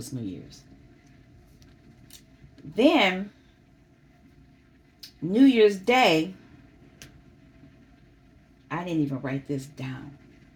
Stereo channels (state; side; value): identical; both; correlation 1.00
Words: New Year's. Then, New Year's Day, I didn't even write this down.